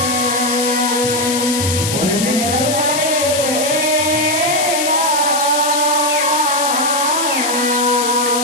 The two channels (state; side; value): noise; left; hiss, 2 dB below the sound